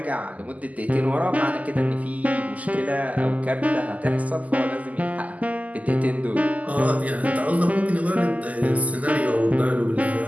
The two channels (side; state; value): left; late; 0.075 ms